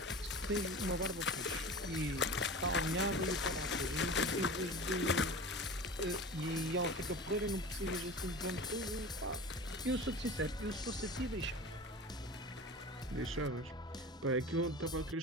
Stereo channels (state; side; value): normal; both; correlation 0.34